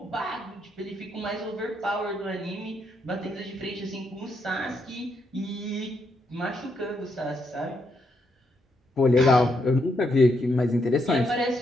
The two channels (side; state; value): both; normal; correlation 0.78